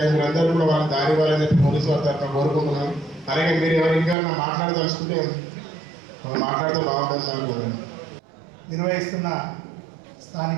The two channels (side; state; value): left; drops out; at 4.2 s